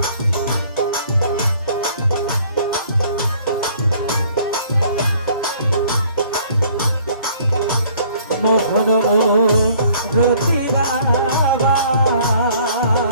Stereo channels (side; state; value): both; inverted; correlation -0.57